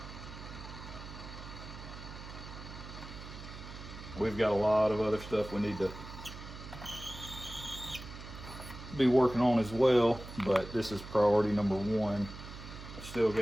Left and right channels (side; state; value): right; noise; hum, 12 dB below the sound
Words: we've got a lot of other stuff we need to be working on as well, but this is priority number one. I've still